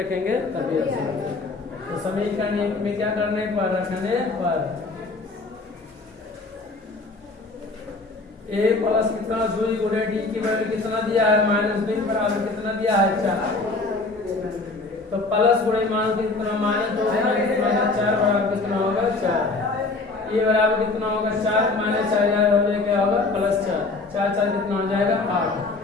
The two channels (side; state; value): right; quieter; 3.5 dB